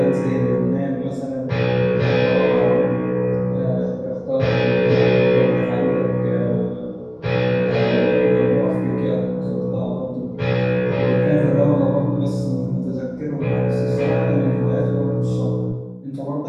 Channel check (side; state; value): both; identical; correlation 1.00